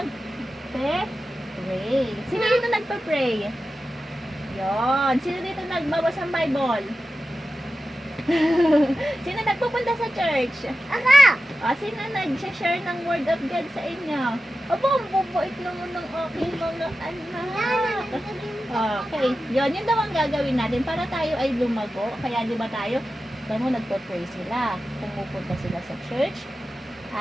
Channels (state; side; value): normal; both; correlation 0.93